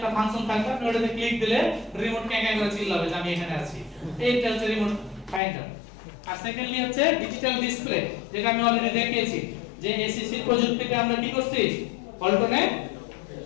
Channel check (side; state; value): right; drops out; at 5.4 s